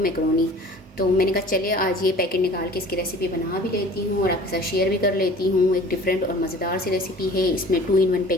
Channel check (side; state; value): both; normal; correlation 0.46